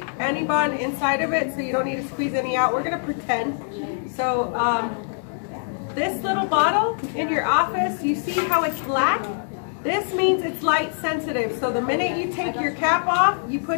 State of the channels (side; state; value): right; silent; 63 dB below the other